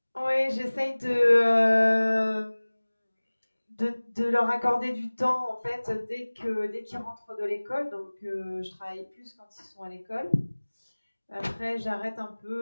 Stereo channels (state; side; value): inverted; both; correlation -1.00